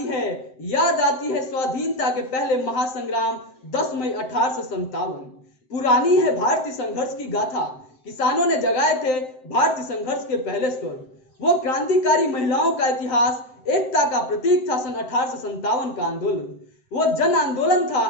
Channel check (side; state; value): right; late; 7.8 ms